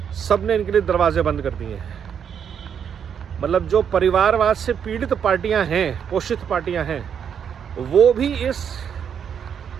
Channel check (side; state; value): left; quieter; 7.9 dB